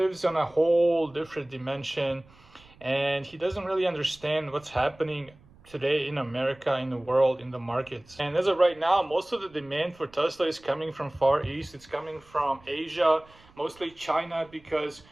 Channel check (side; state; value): right; noise; rumble, 27 dB below the sound